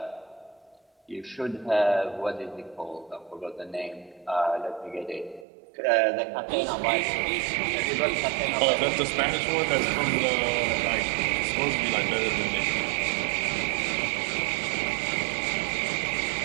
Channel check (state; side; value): drops out; left; at 5.5 s